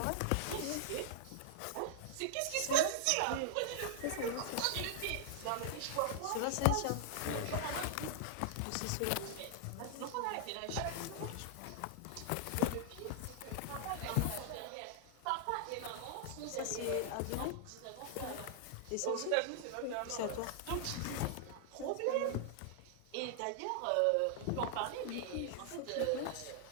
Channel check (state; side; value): different; both; correlation -0.01